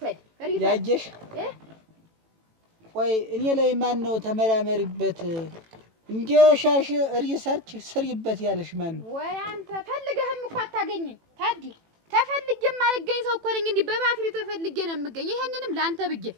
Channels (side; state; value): left; late; 18 ms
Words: ያየሽ ቆይ እኔ ላይ ማን ነው ተመራመሪበት እንዲሻሽ ሪሰርች ስሪበት ያለሽ ማን ነው ወይ አንተ ፈልገህም እኮ አታገኝኝ ታዲ ተፈልጌም አልገኝ ሰው እኮ ነኝ እንዴ በባትሪ ተፈልጌ ነው የምገኝ ይሄንንም ላንተ ብዬ